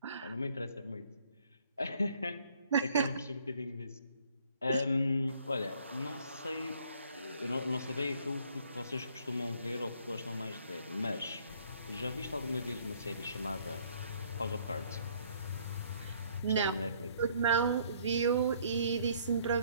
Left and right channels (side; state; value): both; inverted; correlation -0.63